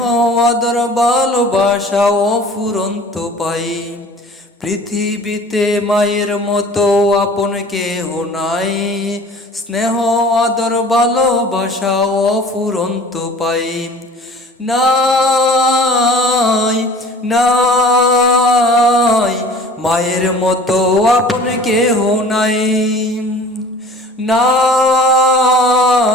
আদর ভালোবাসা অফুরন্ত পাই। পৃথিবীতে মায়ের মতো আপন কেহ নাই, স্নেহ আদর ভালোবাসা অফুরন্ত পাই। নাই নাই মায়ের মতো আপন কেহ নাই,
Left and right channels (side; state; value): both; normal; correlation 0.45